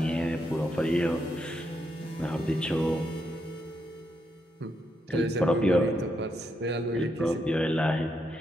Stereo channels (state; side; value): normal; both; correlation 0.80